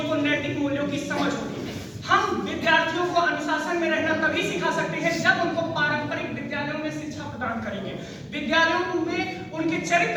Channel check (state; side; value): identical; both; correlation 1.00